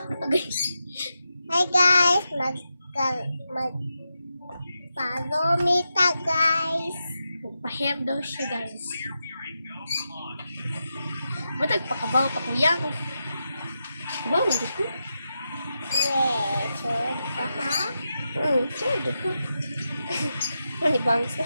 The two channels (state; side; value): inverted; both; correlation -0.88